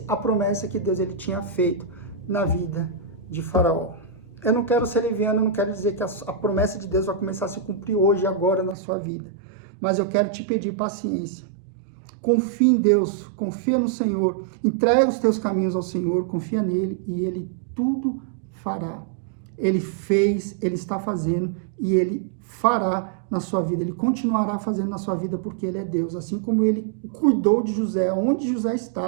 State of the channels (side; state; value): left; drops out; at 8.8 s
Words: a promessa que Deus ele tinha feito na vida de Faraó. Eu não quero ser leviano, eu não quero dizer que a promessa de Deus vai começar a se cumprir hoje e agora na sua vida. Mas eu quero te pedir paciência. Confia em Deus, confia no Senhor, entrega os teus caminhos ao Senhor, confia nele e ele tudo fará. Ele fez, ele está fazendo e ele fará na sua vida. Ele continuará fazendo na sua vida porque ele é Deus. Assim como ele cuidou de José, onde José